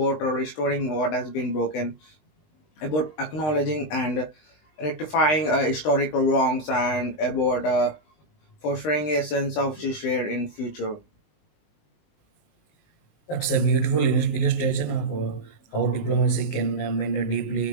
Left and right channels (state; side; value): late; right; 20 ms